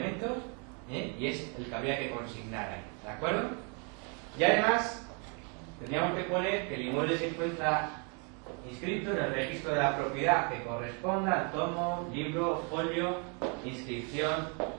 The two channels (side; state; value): left; quieter; 35.9 dB